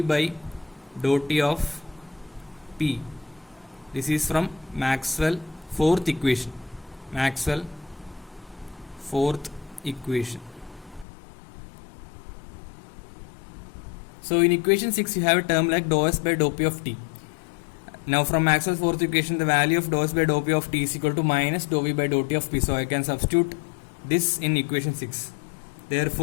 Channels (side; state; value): right; drops out; at 11.1 s